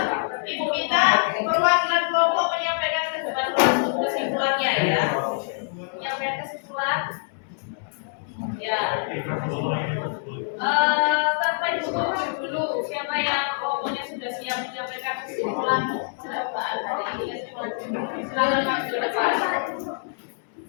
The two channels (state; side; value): silent; right; digital silence